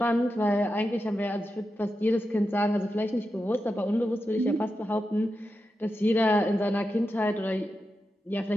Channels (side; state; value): both; normal; correlation 0.89